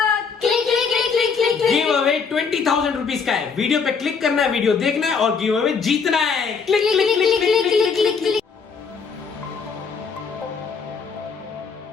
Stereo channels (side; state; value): right; quieter; 5.6 dB